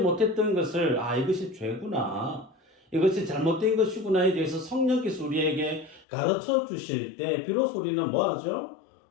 것을 이것이 죄구나, 이것이 잘못된 것이구나에 대해서 성령께서 우리에게 가르쳐 주실 때 비로소 우리는 뭐하죠?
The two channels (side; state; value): right; drops out; at 6.1 s